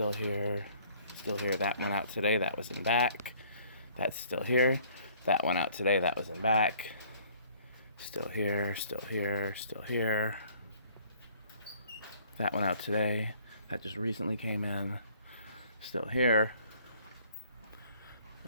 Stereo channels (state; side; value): inverted; both; correlation -0.57